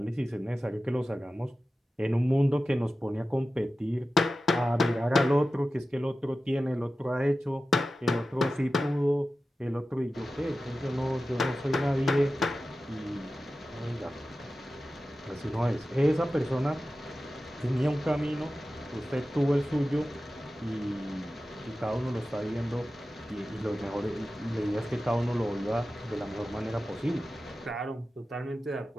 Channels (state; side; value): normal; both; correlation 0.94